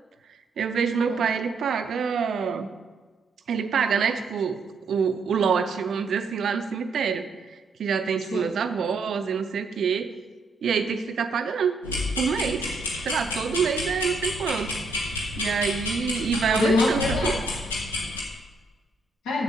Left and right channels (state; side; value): quieter; left; 3.5 dB